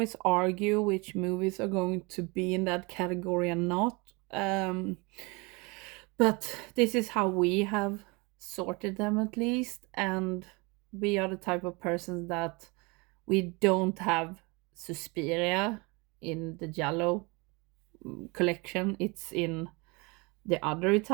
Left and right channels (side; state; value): left; quieter; 27.7 dB